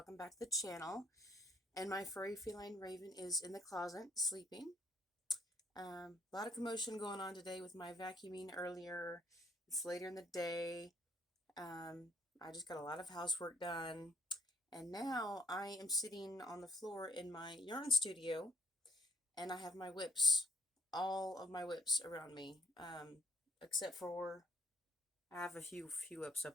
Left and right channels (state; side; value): normal; both; correlation 0.67